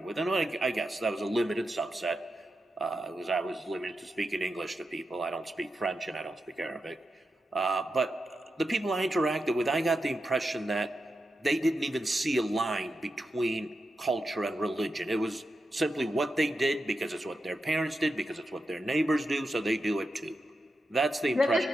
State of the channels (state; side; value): normal; both; correlation 0.88